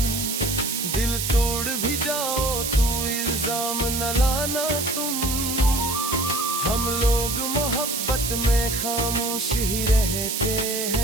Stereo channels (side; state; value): right; noise; hiss, 2 dB below the sound